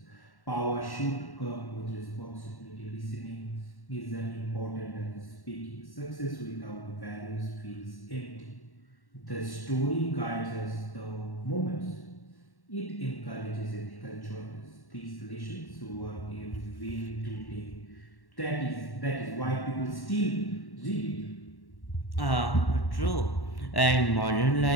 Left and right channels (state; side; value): late; right; 1.1 ms